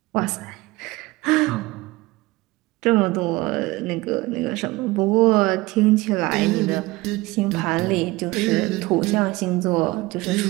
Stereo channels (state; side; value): quieter; left; 20.7 dB